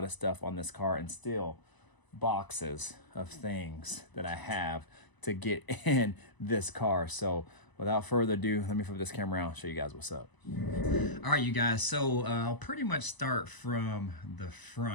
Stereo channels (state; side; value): late; right; 1.0 ms